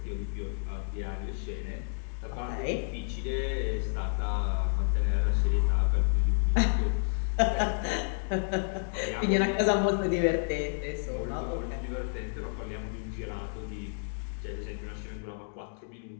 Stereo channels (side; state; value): right; silent; digital silence